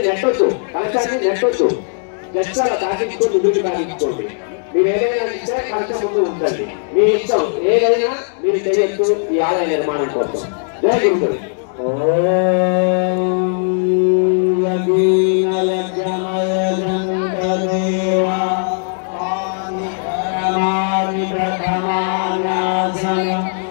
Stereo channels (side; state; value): right; silent; digital silence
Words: నెట్టొచ్చు, కలశాన్ని నెట్టొచ్చు, జస్ట్ అలా తాకించుకొని ముందుకు తాకించుకోండి. మీరు ఏదైనా ఇస్తే కలశం ముందు ఉంచండి, మీ ఇష్టం ఏదైనా మీరు చేయొచ్చు ఈ ఆలయ నిర్మాణం కోసం. జై గురువులు.